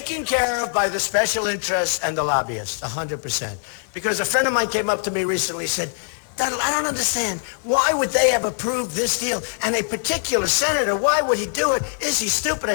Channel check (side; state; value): right; silent; digital silence